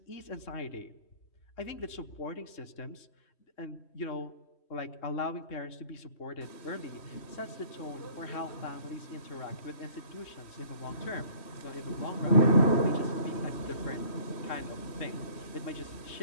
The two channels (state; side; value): late; right; 3.1 ms